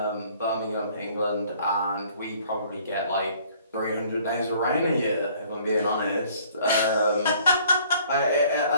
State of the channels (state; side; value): inverted; both; correlation -0.57